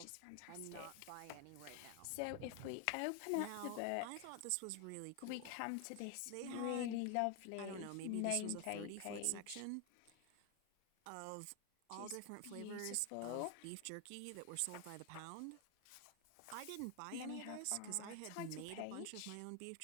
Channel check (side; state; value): both; different; correlation 0.01